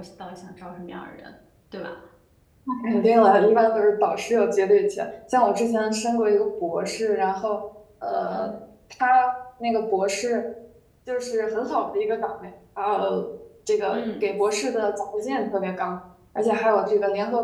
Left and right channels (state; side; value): identical; both; correlation 1.00